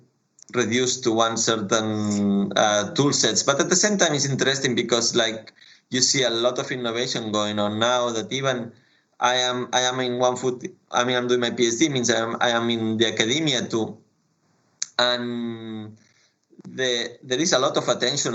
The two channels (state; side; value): identical; both; correlation 1.00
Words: reduced to one certain tool sets. But at the same time, it's interesting because like you see a lot of innovation going on now that even I am in one foot. I mean, I'm doing my PhD, means I am in the academia too, and there is a lot of attention